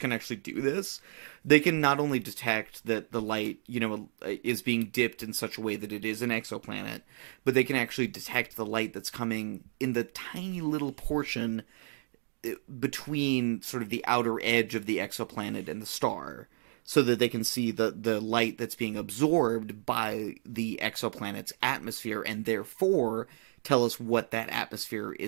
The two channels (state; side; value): silent; left; digital silence